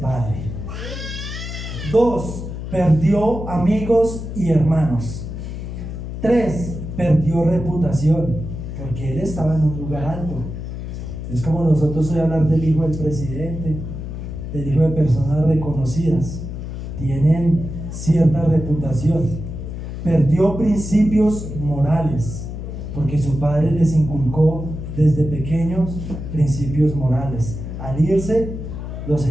2, perdió amigos y hermanos. 3, perdió reputación, porque él estaba en un lugar alto. Es como nosotros hoy hablar del hijo del presidente, del hijo de personas reconocidas. Tienen cierta reputación. Perdió principios morales, porque su padre les inculcó desde pequeños principios morales. Al irse, los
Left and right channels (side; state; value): left; noise; hum, 7 dB below the sound